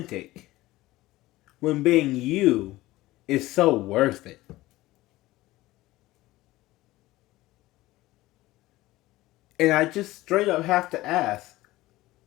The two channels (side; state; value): right; quieter; 17.9 dB